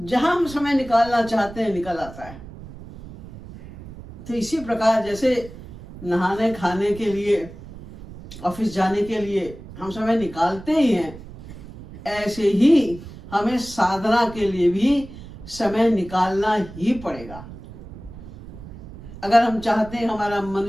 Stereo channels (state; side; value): noise; right; rumble, 15 dB below the sound